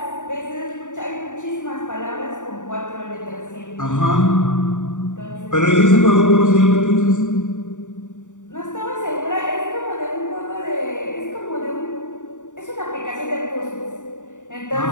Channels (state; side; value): late; right; 0.86 ms